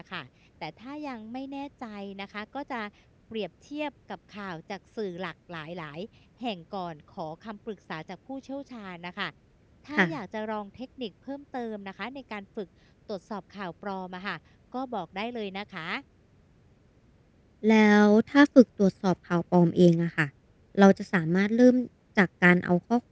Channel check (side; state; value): both; identical; correlation 1.00